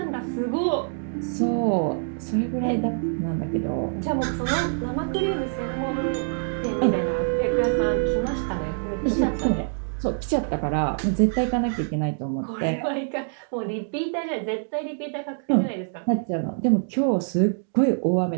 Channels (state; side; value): silent; left; digital silence